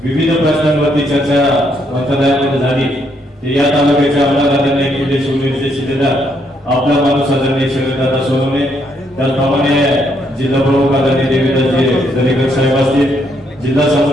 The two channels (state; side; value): normal; both; correlation 0.73